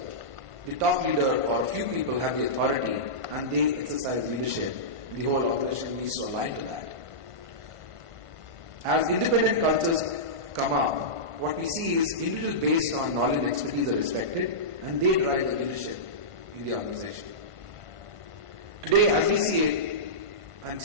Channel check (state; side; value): late; left; 1.5 ms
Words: the top leader or a few people have the authority and they exercise leadership. The whole organization needs to align to that. As independent cultures come up, what we see is individuals based on knowledge and expertise are respected and they drive the leadership in the organization. Today, as we see it, and